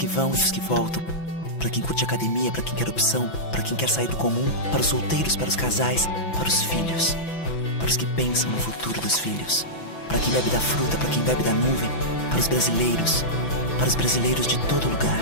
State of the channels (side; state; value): right; late; 6.0 ms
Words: vão e os que voltam, para quem curte academia, para quem quer opção, para quem quer sair do comum, para os solteiros, para os casais, para os filhos, para os que pensam no futuro dos filhos, para quem bebe da fruta, para quem bebe da nuvem, para os brasileiros de todo